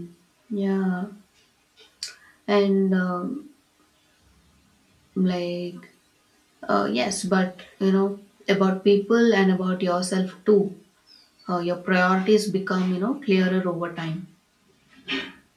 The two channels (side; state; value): both; identical; correlation 1.00